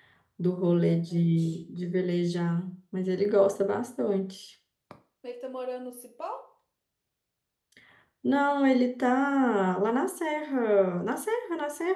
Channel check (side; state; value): both; identical; correlation 1.00